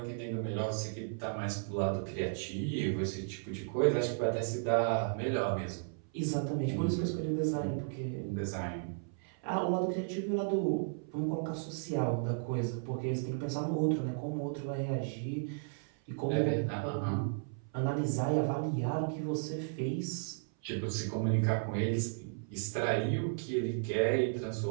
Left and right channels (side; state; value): left; silent; 55 dB below the other